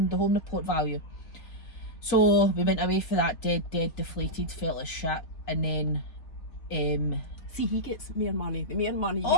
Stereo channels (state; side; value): late; right; 3.7 ms